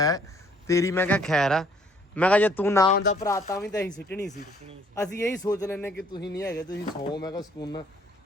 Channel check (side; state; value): both; normal; correlation 0.62